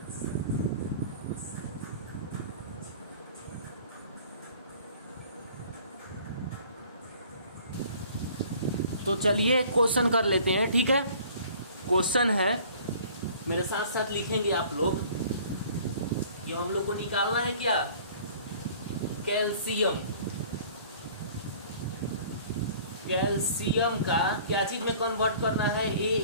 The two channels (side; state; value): both; inverted; correlation -0.50